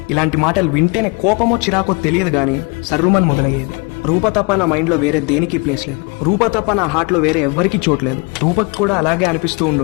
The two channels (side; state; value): right; quieter; 29.2 dB